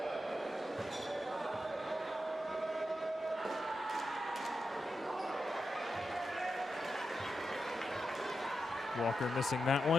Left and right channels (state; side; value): normal; both; correlation 0.88